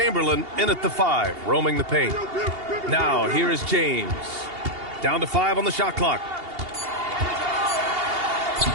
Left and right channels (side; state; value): left; late; 2.8 ms